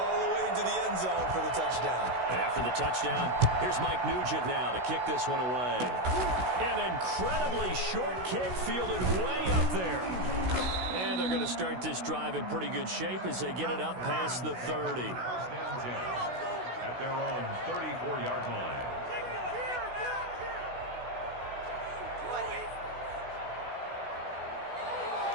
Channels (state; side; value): late; left; 16 ms